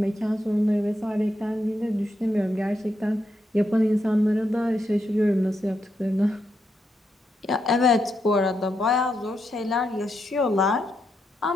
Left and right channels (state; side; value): normal; both; correlation 0.82